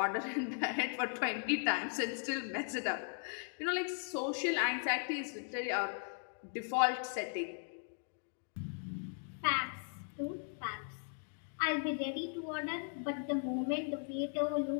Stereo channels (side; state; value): right; silent; 52 dB below the other